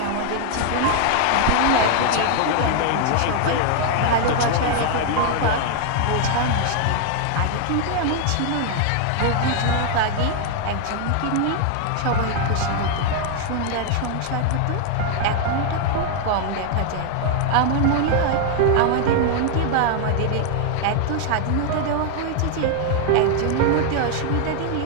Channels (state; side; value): different; both; correlation 0.00